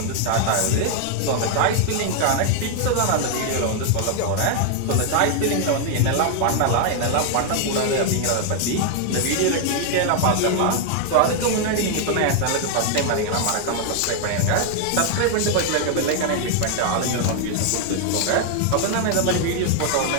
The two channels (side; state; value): both; different; correlation 0.00